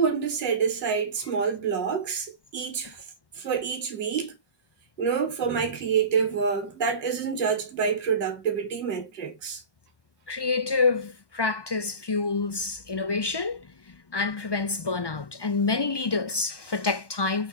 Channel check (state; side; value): late; right; 1.2 ms